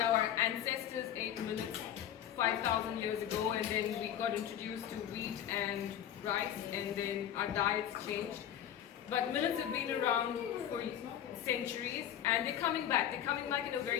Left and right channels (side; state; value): right; quieter; 10.3 dB